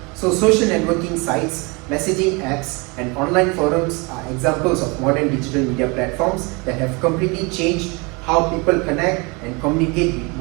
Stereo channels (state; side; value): quieter; left; 28.6 dB